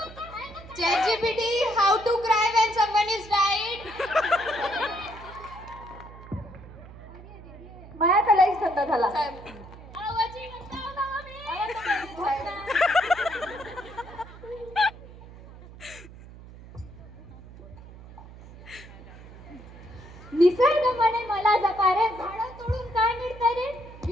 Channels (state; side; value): noise; right; hum, 17 dB below the sound